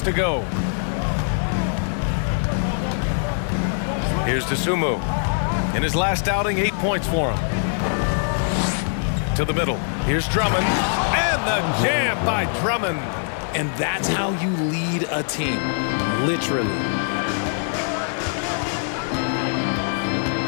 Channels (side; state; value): right; silent; digital silence